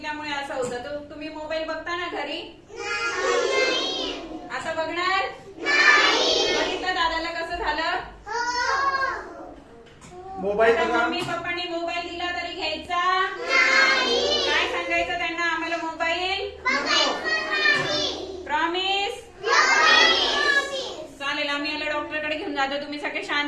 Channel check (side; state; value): both; identical; correlation 1.00